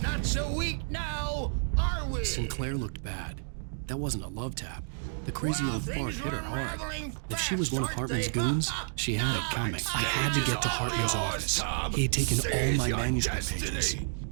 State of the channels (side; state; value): left; silent; digital silence